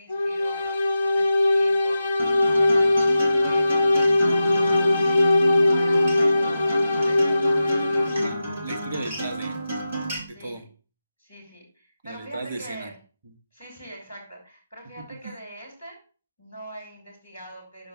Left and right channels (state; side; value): inverted; both; correlation -0.92